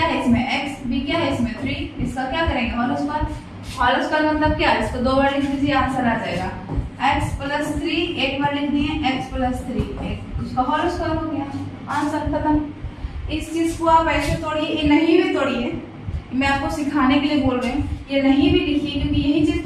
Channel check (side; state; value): both; identical; correlation 1.00